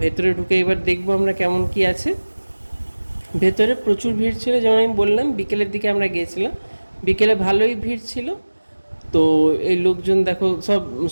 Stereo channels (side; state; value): both; inverted; correlation -1.00